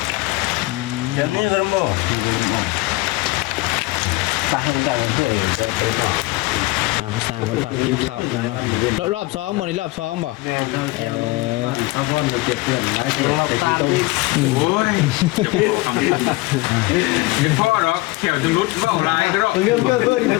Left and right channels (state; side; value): quieter; right; 21.5 dB